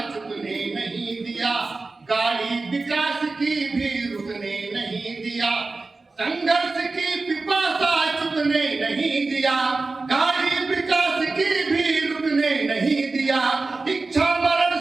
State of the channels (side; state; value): left; quieter; 3.7 dB